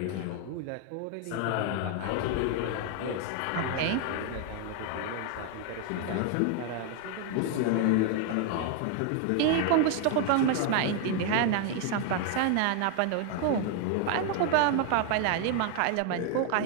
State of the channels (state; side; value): different; both; correlation 0.00